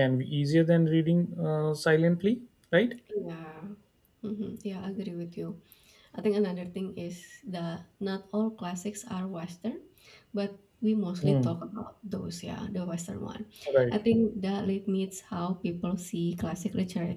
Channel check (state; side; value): identical; both; correlation 1.00